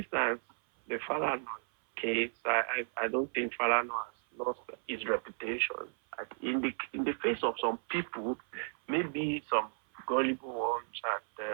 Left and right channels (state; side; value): silent; left; 55 dB below the other